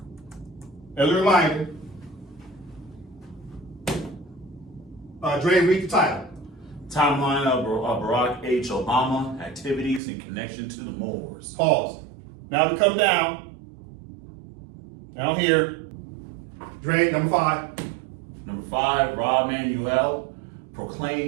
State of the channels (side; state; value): left; drops out; at 10.0 s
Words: As a reminder, Dre, read the title. Timeline of Barack H. Obama activities in connection to the Moors. Pause. Now we come down here. Dre, number 5. Number 5, Rob Manuel